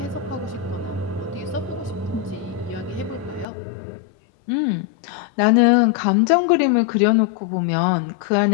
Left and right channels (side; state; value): right; drops out; at 3.5 s